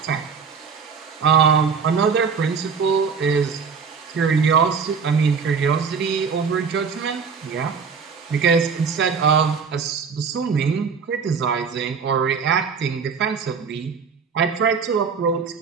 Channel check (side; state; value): left; quieter; 5.9 dB